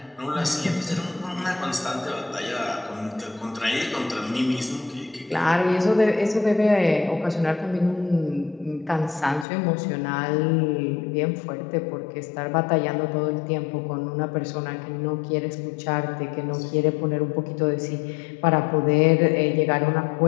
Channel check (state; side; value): drops out; right; at 9.5 s